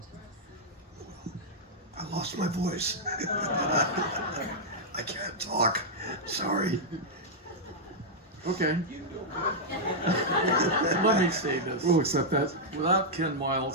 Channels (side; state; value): both; normal; correlation -0.06